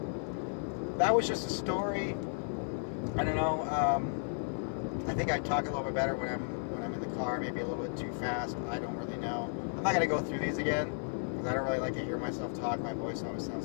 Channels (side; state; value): right; silent; digital silence